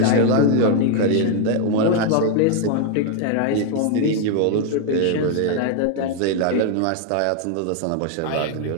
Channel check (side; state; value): both; different; correlation 0.00